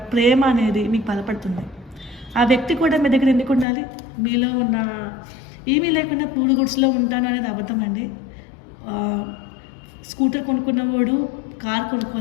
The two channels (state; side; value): drops out; right; at 3.7 s